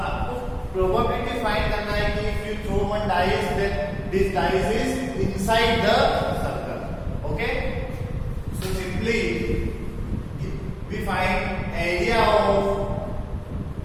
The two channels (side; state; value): both; identical; correlation 1.00